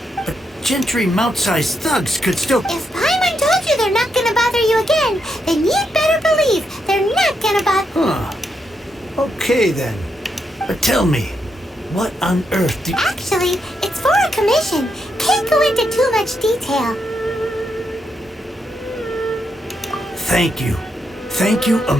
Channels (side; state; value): both; normal; correlation 0.81